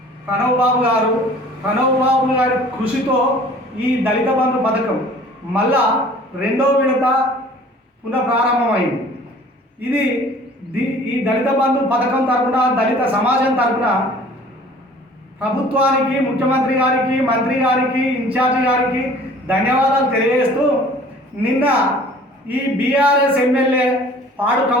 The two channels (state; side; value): normal; both; correlation 0.50